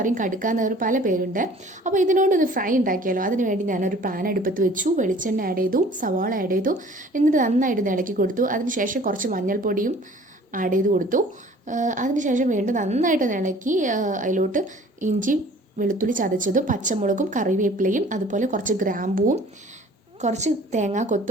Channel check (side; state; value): both; normal; correlation 0.50